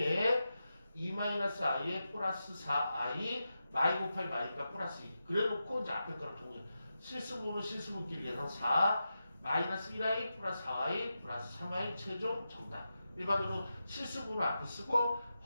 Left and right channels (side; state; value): both; inverted; correlation -0.90